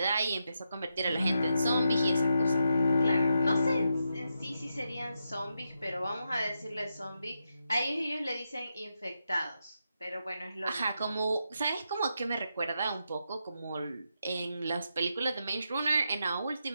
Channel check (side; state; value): both; inverted; correlation -0.85